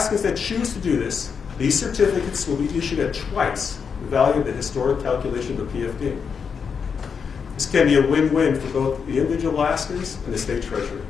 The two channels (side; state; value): right; quieter; 6.2 dB